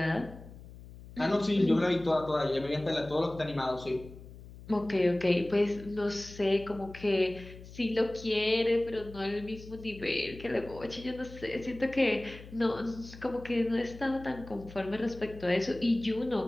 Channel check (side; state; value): left; noise; hum, 17 dB below the sound